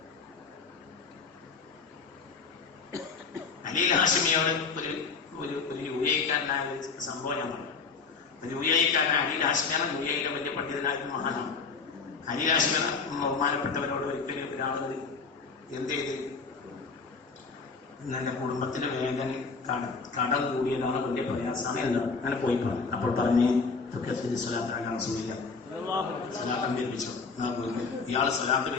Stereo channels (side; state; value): right; quieter; 4.8 dB